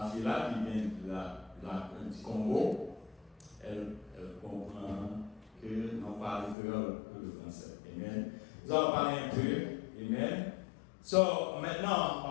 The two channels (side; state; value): right; drops out; at 6.6 s